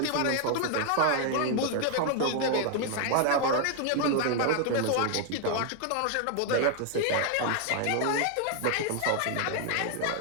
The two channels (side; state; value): both; different; correlation 0.00